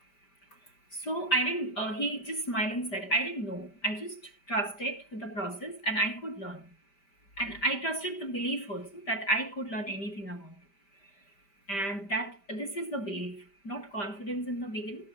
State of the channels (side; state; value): right; late; 5.1 ms